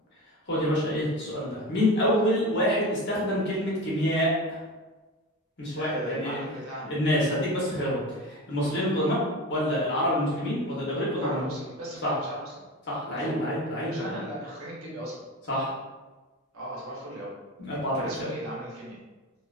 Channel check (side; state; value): both; normal; correlation 0.29